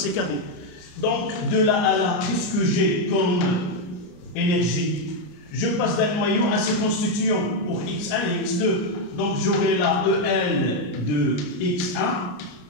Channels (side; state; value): right; late; 33 ms